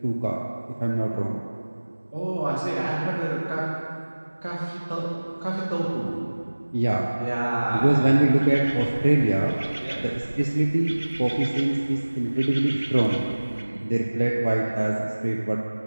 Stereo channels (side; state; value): both; inverted; correlation -1.00